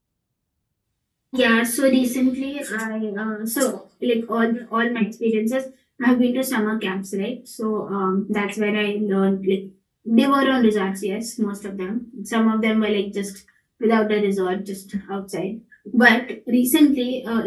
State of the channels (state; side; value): identical; both; correlation 1.00